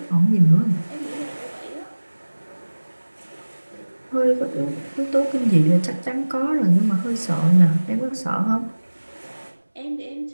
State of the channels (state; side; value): inverted; both; correlation -1.00